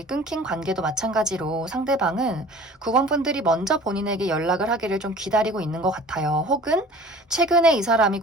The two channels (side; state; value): both; normal; correlation 0.44